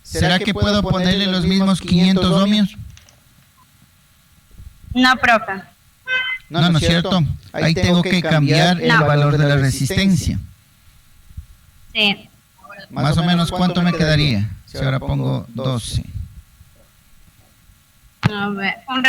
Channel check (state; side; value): identical; both; correlation 1.00